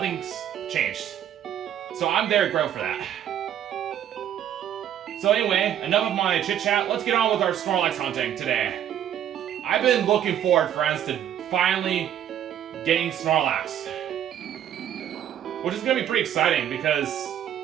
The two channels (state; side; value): quieter; left; 10.3 dB